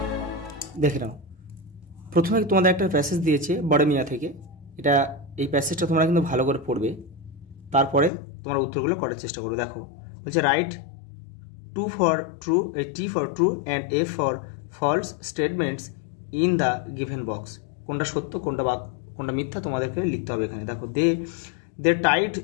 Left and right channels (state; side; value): drops out; right; at 8.1 s